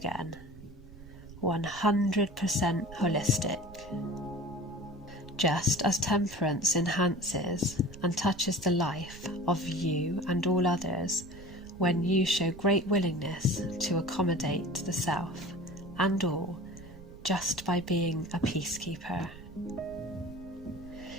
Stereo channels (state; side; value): noise; right; rumble, 18 dB below the sound